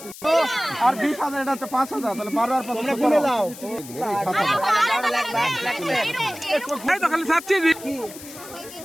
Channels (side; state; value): left; noise; hiss, 15 dB below the sound